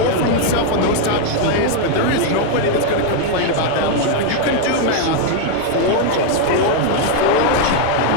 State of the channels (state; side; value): different; both; correlation 0.00